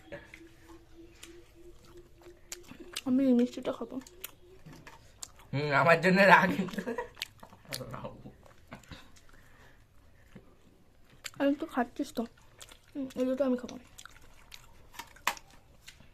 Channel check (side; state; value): both; identical; correlation 1.00